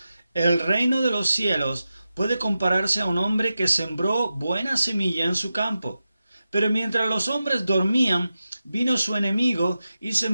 el reino de los cielos puede compararse a un hombre que sembró buena semilla en su campo. Pero mientras los hombres dormían, vino su enemigo y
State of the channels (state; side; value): inverted; both; correlation -0.92